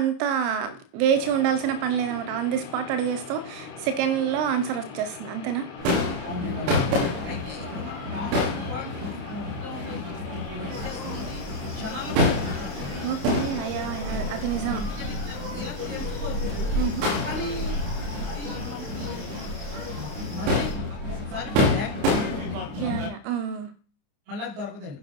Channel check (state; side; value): late; left; 29 ms